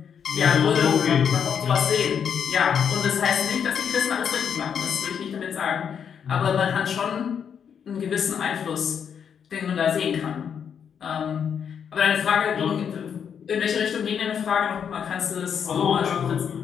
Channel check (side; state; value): right; quieter; 7.6 dB